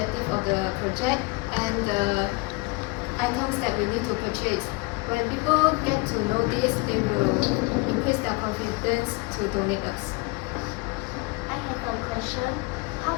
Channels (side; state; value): right; quieter; 27.0 dB